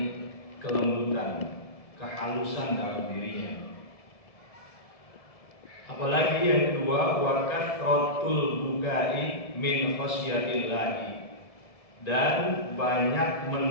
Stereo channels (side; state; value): right; late; 1.7 ms